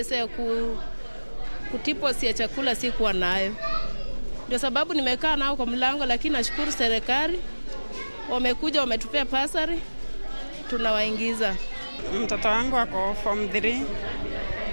ya kutipo si ya chakula sikuwa nayo. Ndio sababu nimekaa nao kwa mlango, lakini nashukuru serikali wamekuja wametupea pasari tunawaingiza. Mtoto wangu ako Form 3.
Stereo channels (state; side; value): inverted; both; correlation -1.00